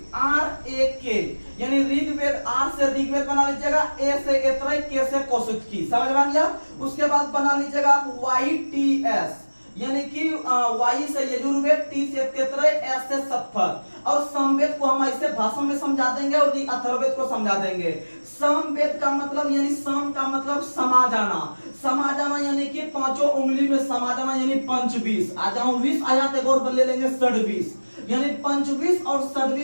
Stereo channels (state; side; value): inverted; both; correlation -1.00